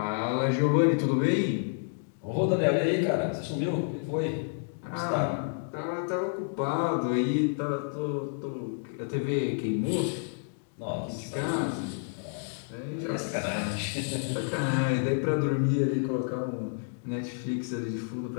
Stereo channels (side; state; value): right; silent; digital silence